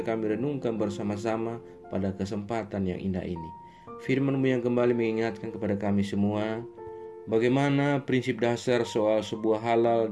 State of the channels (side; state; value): both; identical; correlation 1.00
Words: kami renungkan bersama-sama pada kesempatan yang indah ini. Firman-Mu yang kembali mengingatkan kepada kami semua bagaimana prinsip dasar soal sebuah halal